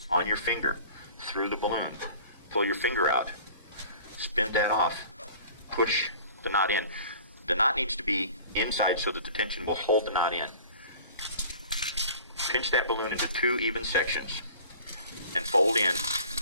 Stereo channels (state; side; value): inverted; both; correlation -0.46